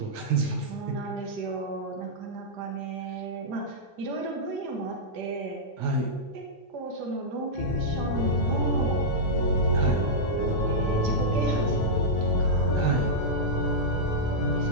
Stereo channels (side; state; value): both; normal; correlation -0.09